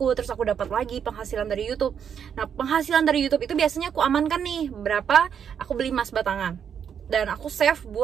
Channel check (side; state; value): left; quieter; 7.9 dB